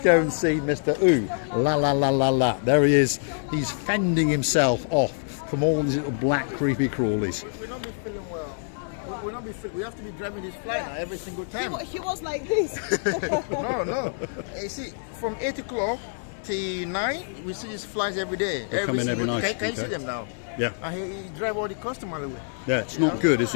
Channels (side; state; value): right; silent; digital silence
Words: and see Mr. Ooh La La La La La. There he is. He's fending himself off from all these little black creepy crawlies. We'll not be feeling well. We'll not be feeling. We have to be driving this fly now every single time. He was like this. No. You see, from 8 o'clock till 9, we see these flies every day. They come in every single- night, Can you see okay. them now? Yeah. And he drive all the customers away. Yeah, it's not good, is